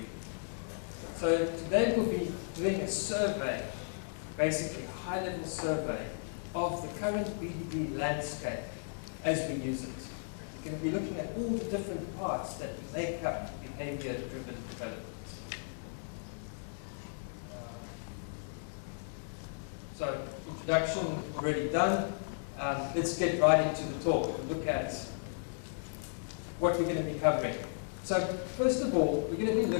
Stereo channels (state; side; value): silent; right; digital silence